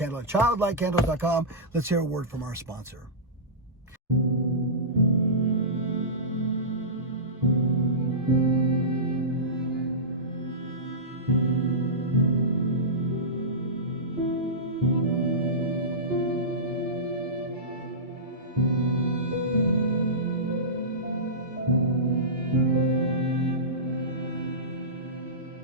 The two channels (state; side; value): normal; both; correlation -0.19